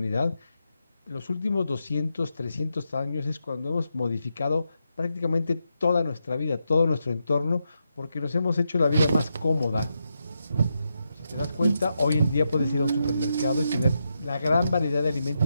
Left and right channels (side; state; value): both; inverted; correlation -0.85